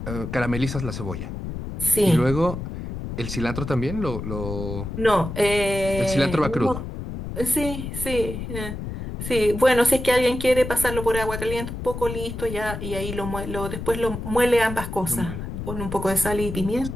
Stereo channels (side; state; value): left; noise; rumble, 7 dB below the sound